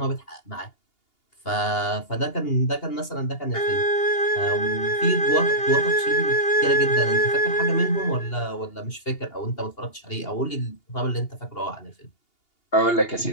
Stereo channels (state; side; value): late; right; 2.8 ms